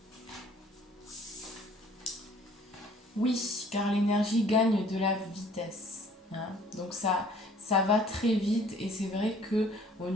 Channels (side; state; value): both; normal; correlation 0.55